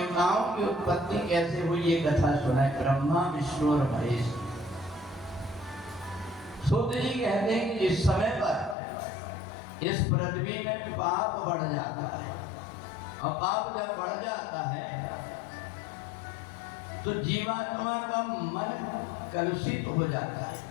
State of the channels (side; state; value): right; drops out; at 8.8 s